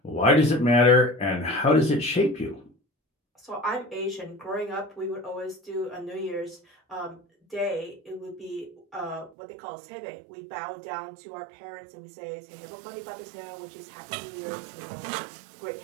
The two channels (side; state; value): left; drops out; at 9.3 s